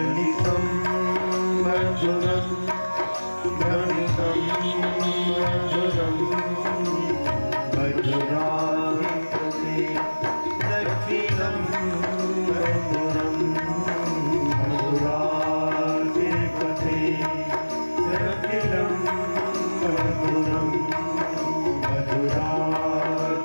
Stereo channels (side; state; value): both; inverted; correlation -1.00